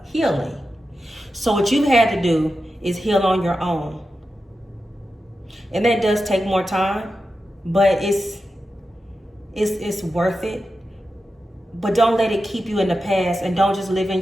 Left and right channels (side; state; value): both; normal; correlation 0.91